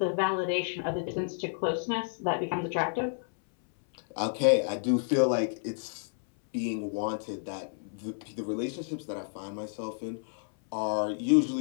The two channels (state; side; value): silent; right; 57 dB below the other